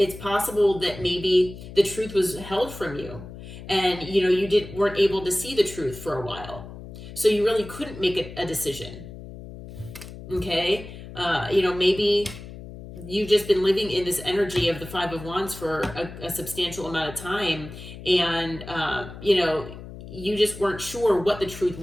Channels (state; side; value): noise; left; hum, 13 dB below the sound